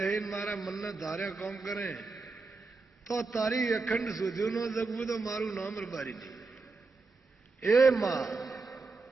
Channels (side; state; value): left; quieter; 4.0 dB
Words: મારા મનના ધાર્યા કામ કરે તો તારી અખંડ સુધ્યું ન જગવું તો મારું નામ રબારી નહીં. એ માં